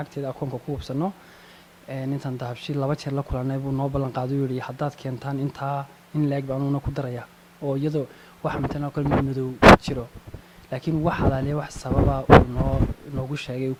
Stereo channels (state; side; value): identical; both; correlation 1.00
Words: akoonka ku hubsanno intaan dahabshiil 2 jeer la kulannay buu noo ballan qaaday uu yidhi haddaad keentaan intaa in leeg baan una ku daraya oo iyadoo waxa matalan kale madow ku jiro laakiin wax hadaaliya wax sababa uu noogu sheegay uu